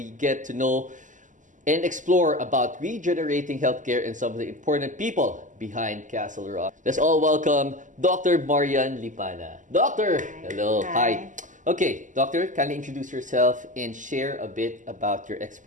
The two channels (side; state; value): left; late; 0.37 ms